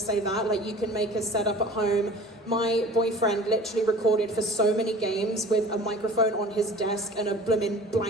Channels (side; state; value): both; normal; correlation 0.44